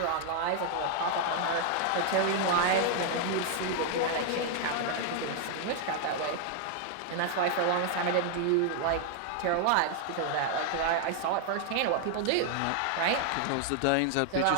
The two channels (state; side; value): different; both; correlation 0.00